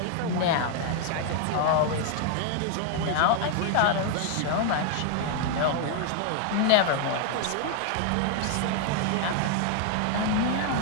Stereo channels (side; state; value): both; different; correlation 0.00